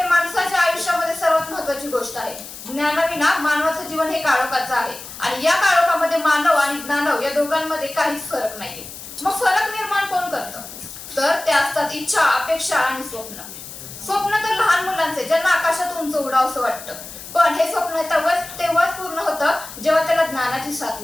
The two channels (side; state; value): left; noise; hiss, 13 dB below the sound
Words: माणसाच्या आयुष्यामध्ये सर्वात महत्वाची गोष्ट आहे. ज्ञानाविना मानवाचं जीवन हे काळोखाचं आहे आणि या काळोखामध्ये मानव आणि ज्ञानव या दोघांमध्ये काहीच फरक नाहीये. मग फरक निर्माण कोण करतं? तर ते असतात इच्छा, अपेक्षा आणि स्वप्न. स्वप्न तर लहान मुलांचे, ज्यांना आकाशात उंच उडावंसं वाटतं, पण हे स्वप्न तेव्हाच पूर्ण होतं जेव्हा त्याला ज्ञानाची साथ